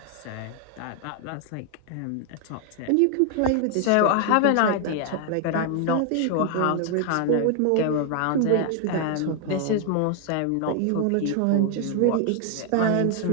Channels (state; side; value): different; both; correlation 0.00